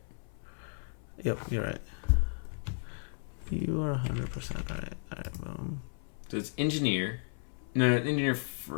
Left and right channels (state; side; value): silent; right; 55 dB below the other